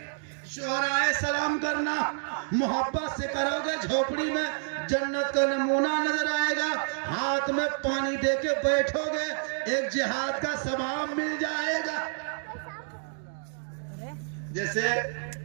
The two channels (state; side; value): silent; left; digital silence